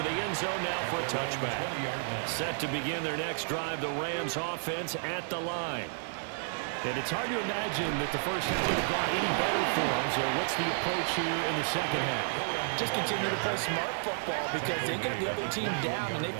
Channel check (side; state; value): left; silent; digital silence